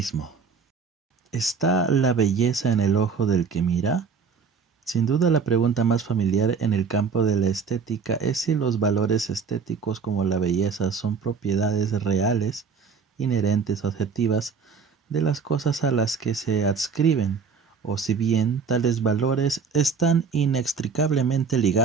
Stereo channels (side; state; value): left; quieter; 5.6 dB